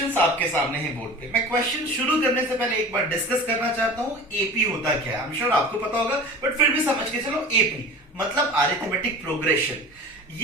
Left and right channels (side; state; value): both; normal; correlation 0.37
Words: आपके सामने हैं बोर्ड पे। मैं क्वेश्चन शुरू करने से पहले एक बार डिस्कस करना चाहता हूं एपी होता क्या है। आई एम श्योर आपको पता होगा, बट फिर भी समझ के चलो। एपी मतलब अरिथमेटिक प्रोग्रेशन।